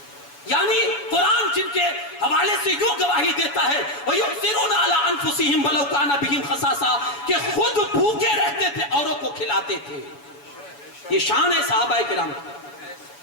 یعنی قرآن جن کے حوالے سے یوں گواہی دیتا ہے وَيُؤْثِرُونَ عَلَىٰ أَنفُسِهِمْ وَلَوْ كَانَ بِهِمْ خَصَاصَةٌ, کہ خود بھوکے رہتے تھے, اوروں کو کھلاتے تھے. یہ شان ہے صحابہ کرام.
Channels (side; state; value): right; late; 7.0 ms